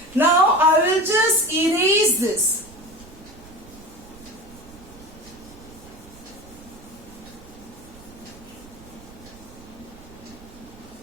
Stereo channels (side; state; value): right; noise; rumble, 21 dB below the sound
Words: Now I will just erase this.